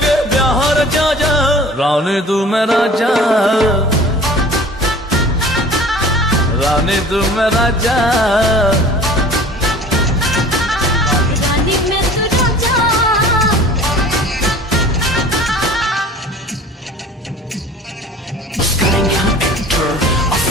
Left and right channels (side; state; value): both; normal; correlation 0.44